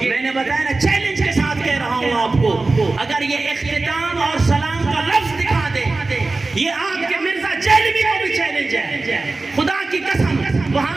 میں نے بتایا نا چیلنج کے ساتھ کہہ رہا ہوں آپ کو. اگر یہ اختتام اور سلام کا لفظ دکھا دے یہ آپ کے مرزا جیلوی کو بھی چیلنج ہے. خدا کی قسم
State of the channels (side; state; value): left; quieter; 3.4 dB